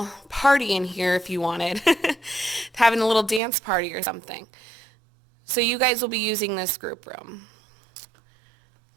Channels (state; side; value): drops out; left; at 3.4 s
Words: party in here if you wanted. Having a little dance party or something. So you guys will be using this group room.